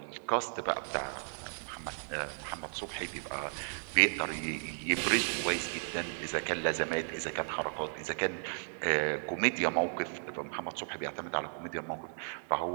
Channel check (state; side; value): silent; left; digital silence